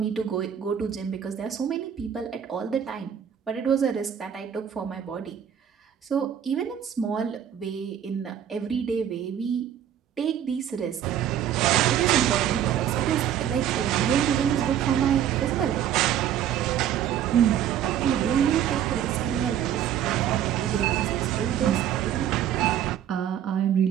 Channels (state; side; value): quieter; left; 9.8 dB